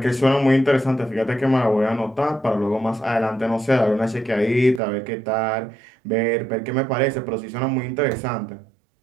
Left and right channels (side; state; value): left; drops out; at 4.8 s